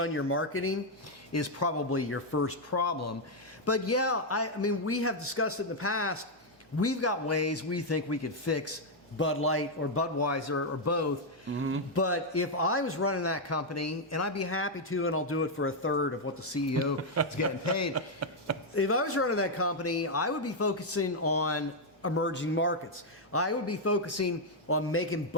your marketing is probably your first problem. But yeah, I mean, we have discussed it in the past. We've got ways we think we could fix Bud Light or Budweiser or both. But if I was running that company, and I'd be happy to, and I'll do it for a third of what the CEO is getting paid. If I was running that company, I would be focusing on emerging markets. I would be focusing on making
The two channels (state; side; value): normal; both; correlation -0.01